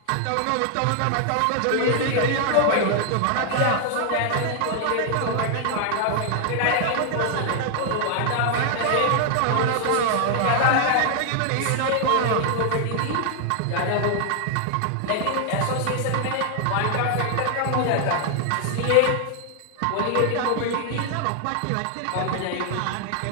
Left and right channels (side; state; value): both; different; correlation 0.00